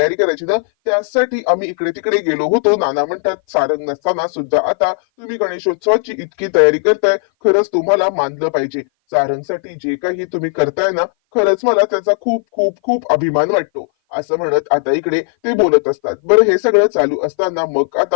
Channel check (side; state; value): right; silent; 57 dB below the other